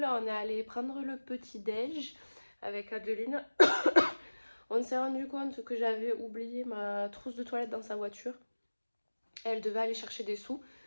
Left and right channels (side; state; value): both; inverted; correlation -1.00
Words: on est allé prendre le petit déj avec Adeline. On s'est rendu compte que j'avais oublié ma trousse de toilette dans sa voiture. Elle devait aller chercher des sous.